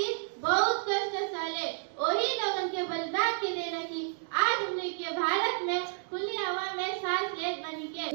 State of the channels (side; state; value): left; silent; digital silence